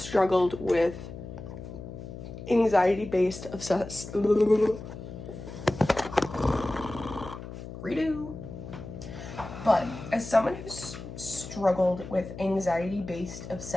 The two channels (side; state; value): left; noise; hum, 11 dB below the sound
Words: with anxiety-based redo. But as someone who's struggled with anxiety-based